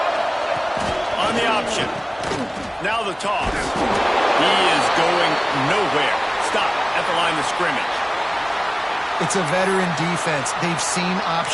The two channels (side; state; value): both; identical; correlation 1.00